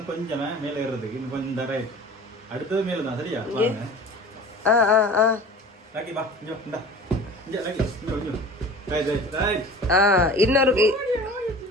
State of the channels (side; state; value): both; normal; correlation 0.40